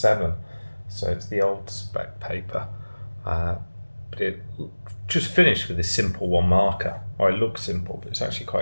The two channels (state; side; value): inverted; both; correlation -1.00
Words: so it's the old spec paper, but it just finished with this simple one marker, or it looks simple, but it's actually quite